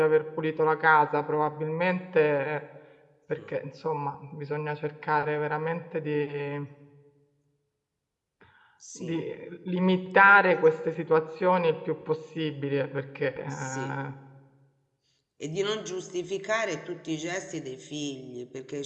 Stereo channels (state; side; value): identical; both; correlation 1.00